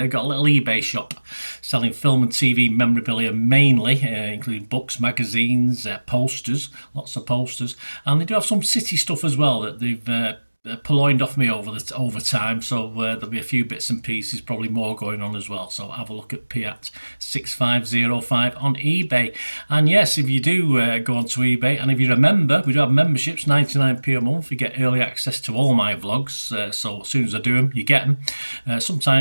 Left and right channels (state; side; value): inverted; both; correlation -1.00